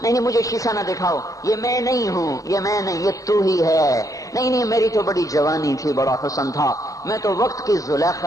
مجھے شیشہ نہ دکھاؤ، یہ میں نہیں ہوں، یہ میں نہیں، یہ تو ہی ہے۔ نہیں میری تو بڑی جوانی تھی، بڑا حسن تھا، میں تو وقت کی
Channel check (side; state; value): right; late; 0.17 ms